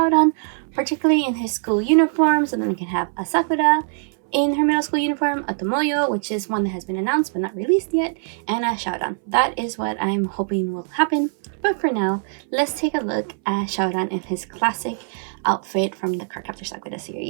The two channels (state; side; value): silent; left; 62 dB below the other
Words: particularly in his school uniform, so then we can have a Sakura in her middle school uniform, a Tomoyo, which is one that has been announced but not released yet, and a Syaoran. That is what I'm hoping will happen. But for now, let's take a look at Syaoran in his classic outfit from the Cardcaptor Sakura